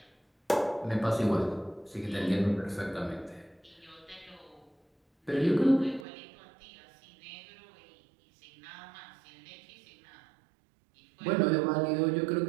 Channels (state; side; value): drops out; left; at 6.1 s